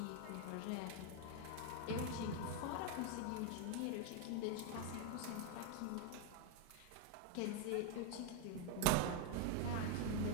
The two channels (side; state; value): both; different; correlation 0.01